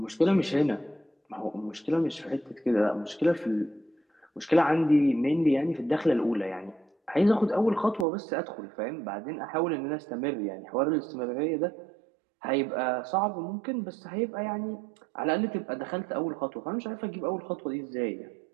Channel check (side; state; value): left; drops out; at 8.1 s